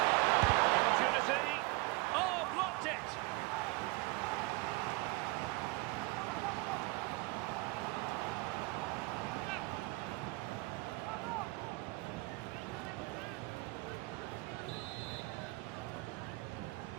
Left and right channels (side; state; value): left; quieter; 23.4 dB